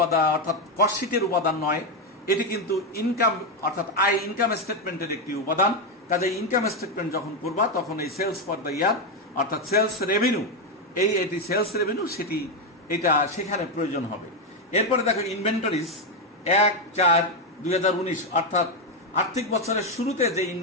অর্থাৎ কস্ট শিটের উপাদান নয়, এটি কিন্তু ইনকাম অর্থাৎ ইনকাম স্টেটমেন্টের একটি উপাদান। কাজে ইনকাম স্টেটমেন্ট যখন করবা তখন এই সেলস ফর দ্য ইয়ার অর্থাৎ সেলস রেভিনিউ, এটি সেলস রেভিনিউ এটা সেখানে প্রয়োজন হবে। এরপরে দেখো ইনভেন্টরিজ 1/4/2019, অর্থাৎ আর্থিক বছরের শুরুতে যে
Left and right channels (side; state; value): both; normal; correlation 0.06